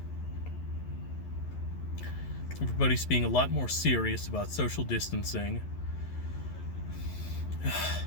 Everybody's being a lot more serious about social distancing.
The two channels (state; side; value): late; right; 11 ms